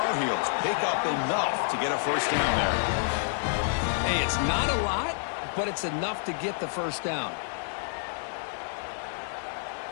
Heels pick up enough to get a first down there. Hey, it's not a lot, but it's enough to get the first down.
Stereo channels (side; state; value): right; silent; digital silence